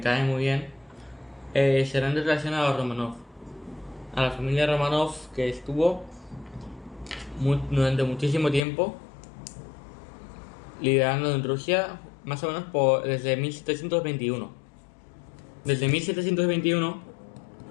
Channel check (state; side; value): drops out; right; at 8.6 s